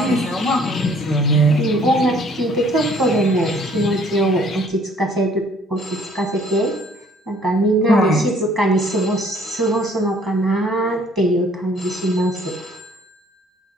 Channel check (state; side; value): normal; both; correlation 0.59